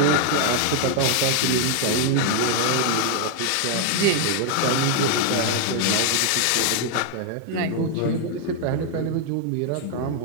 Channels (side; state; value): both; different; correlation 0.00